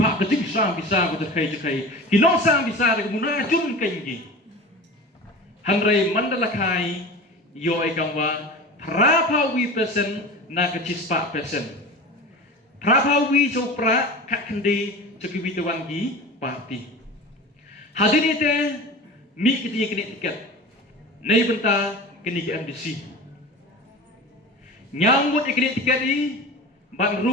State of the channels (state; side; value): normal; both; correlation 0.34